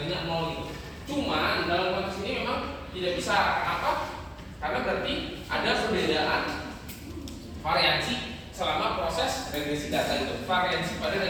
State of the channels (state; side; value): identical; both; correlation 1.00